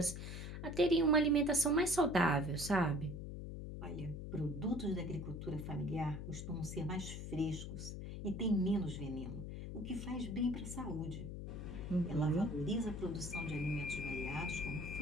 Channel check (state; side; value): noise; left; hum, 7 dB below the sound